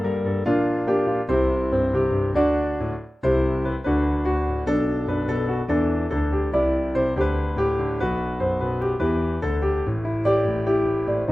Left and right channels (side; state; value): both; normal; correlation 0.96